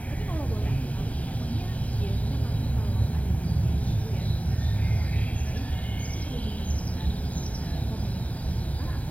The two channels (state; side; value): late; right; 0.069 ms